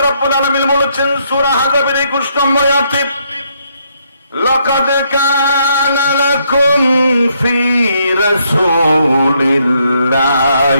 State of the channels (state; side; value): inverted; both; correlation -0.73